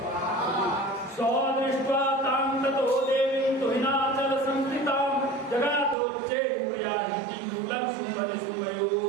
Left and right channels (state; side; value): drops out; left; at 6.0 s